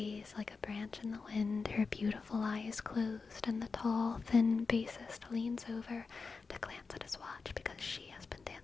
like a branch in the wind, her beautiful eyes closed, and the tall, thin bassist leans over to glance at his watch because she has been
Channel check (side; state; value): right; quieter; 4.6 dB